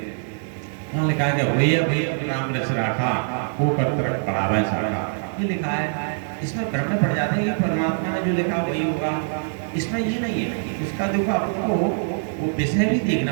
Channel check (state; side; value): silent; left; 63 dB below the other